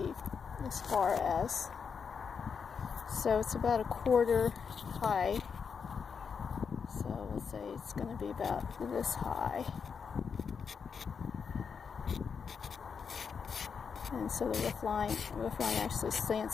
as far as. So it's about 1/4 high. So we'll say it's going to be about this high. And so the roof line actually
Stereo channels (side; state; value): right; quieter; 6.2 dB